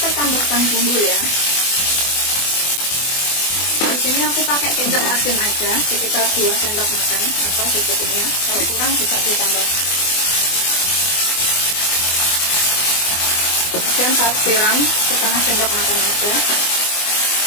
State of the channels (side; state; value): right; late; 24 ms